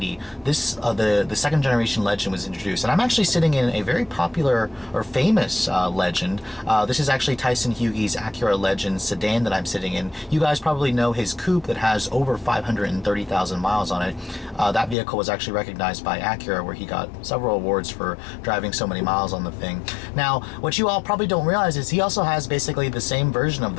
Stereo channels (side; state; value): right; drops out; at 15.0 s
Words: the second generation Legend was introduced, and I'm actually sitting in a very popular or famous Legend. This is actually Tyson Hughes' Acura Legend sedan that I'm sitting in. You guys probably know his coupe that has over 530,000 miles on it. That vehicle was actually recognized by Acura, where he got several awards for driving so many miles on the thing. Now, what you all probably don't realize is he also has basically the same version of